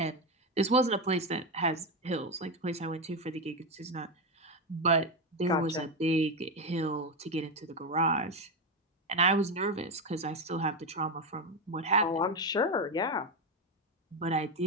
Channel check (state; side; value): normal; both; correlation 0.11